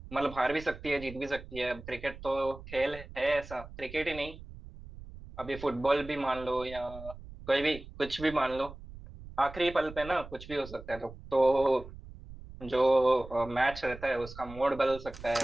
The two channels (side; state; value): right; noise; rumble, 15 dB below the sound